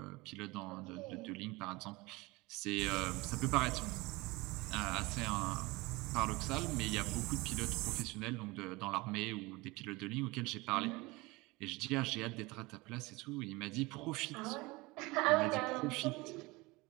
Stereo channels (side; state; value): left; quieter; 23.0 dB